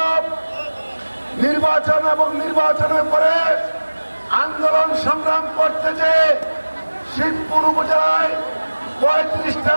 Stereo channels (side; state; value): both; inverted; correlation -1.00